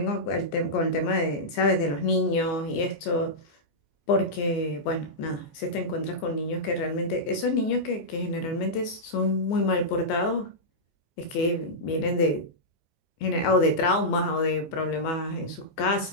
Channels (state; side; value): late; right; 14 ms